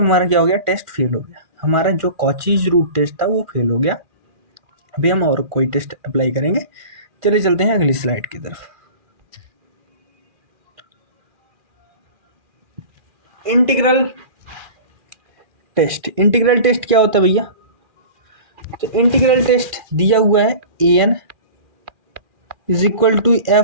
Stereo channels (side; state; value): left; late; 2.4 ms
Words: क्या हो गया, टेस्ट फेल हो गया, हमारा जो कॉचीज रूट टेस्ट था वो फेल हो गया। अभी हम और कोई टेस्ट अप्लाई करेंगे। चलिए चलते हैं अगली स्लाइड की तरफ। इंटीग्रल टेस्ट, इंटीग्रल टेस्ट क्या होता है भैया, तो इंटीग्रल टेस्ट दिया हुआ है an is equal to